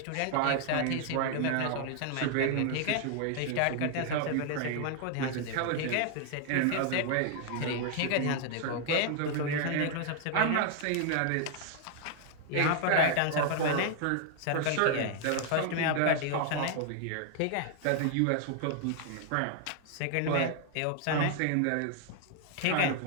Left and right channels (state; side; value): different; both; correlation 0.00